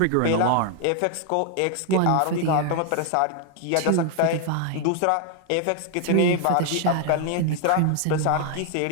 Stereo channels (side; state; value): both; different; correlation 0.00